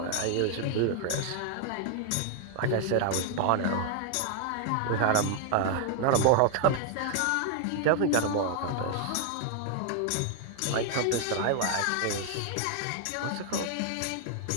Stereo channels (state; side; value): different; both; correlation 0.00